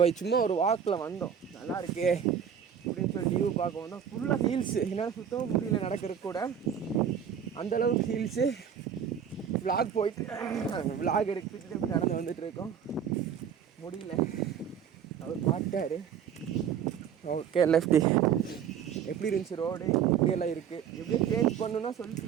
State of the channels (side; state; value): left; quieter; 8.1 dB